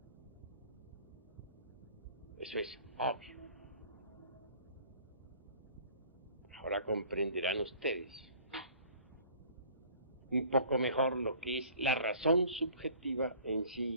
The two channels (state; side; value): inverted; both; correlation -0.50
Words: Eso es obvio. Ahora comprenderán ustedes un poco mejor lo que es la razón subjetiva en sí